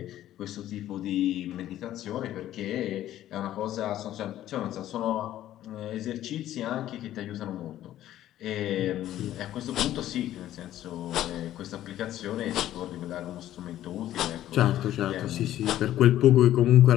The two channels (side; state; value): right; quieter; 13.0 dB